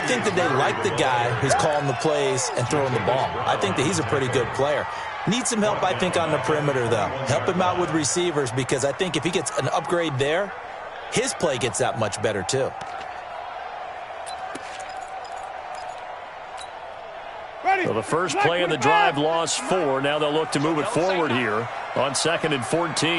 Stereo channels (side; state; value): both; identical; correlation 1.00